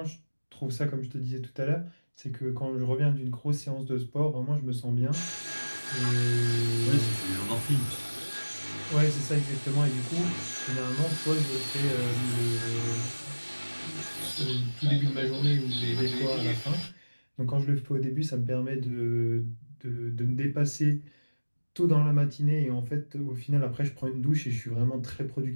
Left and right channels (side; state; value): both; inverted; correlation -1.00